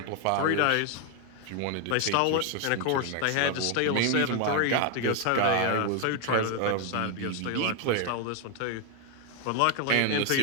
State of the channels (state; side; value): different; both; correlation 0.01